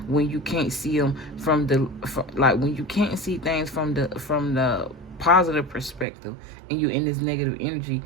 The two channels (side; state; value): left; drops out; at 6.1 s